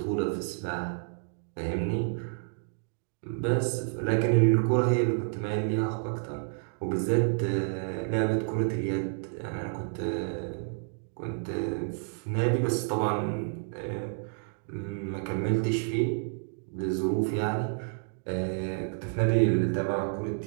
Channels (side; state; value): left; silent; digital silence